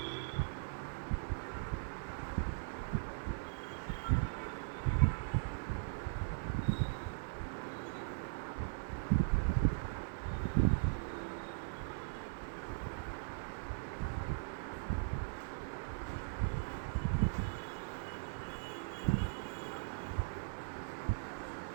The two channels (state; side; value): silent; left; 51 dB below the other